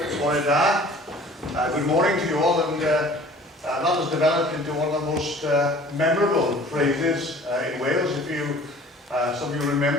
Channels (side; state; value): both; normal; correlation 0.48